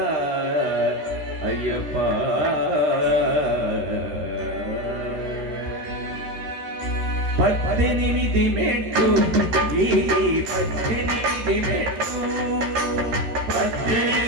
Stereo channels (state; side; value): late; left; 13 ms